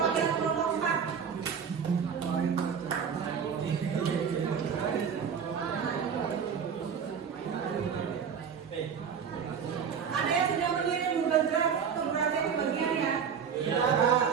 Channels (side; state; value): left; quieter; 7.0 dB